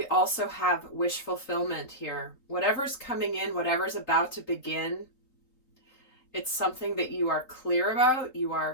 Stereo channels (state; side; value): late; right; 3.9 ms